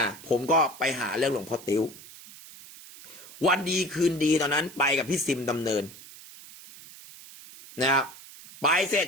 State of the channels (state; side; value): noise; right; hiss, 18 dB below the sound